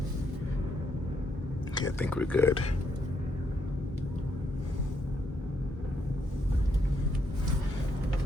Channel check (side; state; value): both; normal; correlation 0.75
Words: Okay, I think we're good.